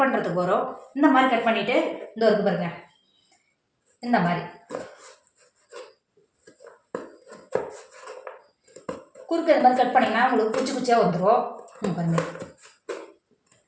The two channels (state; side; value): identical; both; correlation 1.00